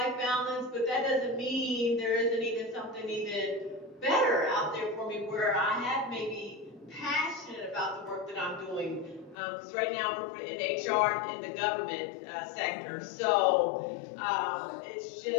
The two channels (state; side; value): drops out; right; at 9.3 s